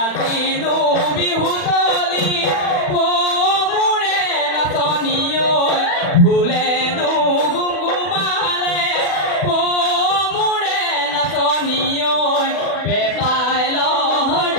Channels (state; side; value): late; right; 40 ms